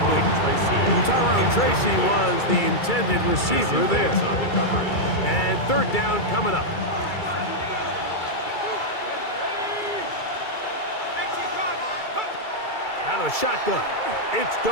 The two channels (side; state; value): right; late; 2.3 ms